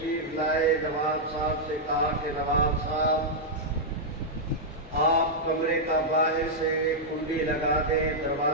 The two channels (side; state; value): both; normal; correlation -0.06